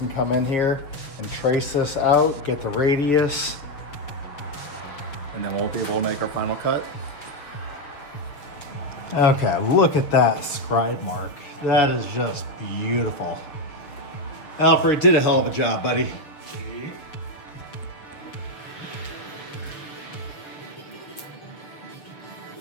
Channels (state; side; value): late; right; 7.0 ms